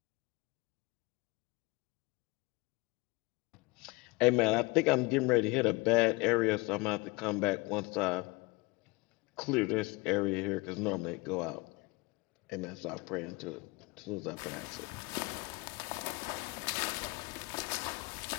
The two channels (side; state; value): right; quieter; 25.2 dB